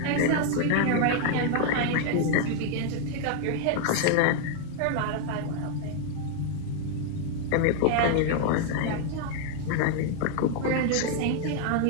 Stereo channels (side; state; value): both; different; correlation 0.00